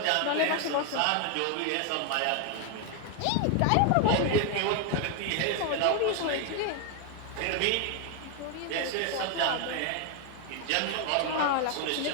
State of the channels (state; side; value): different; both; correlation 0.01